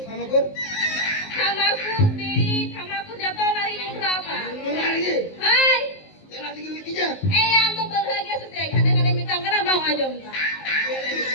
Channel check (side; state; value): right; late; 19 ms